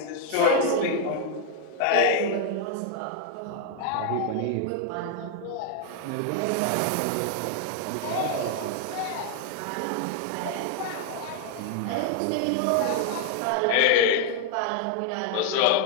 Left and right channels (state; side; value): different; both; correlation 0.00